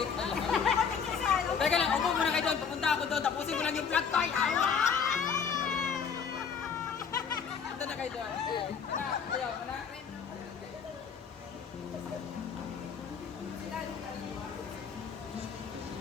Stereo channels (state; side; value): quieter; right; 6.6 dB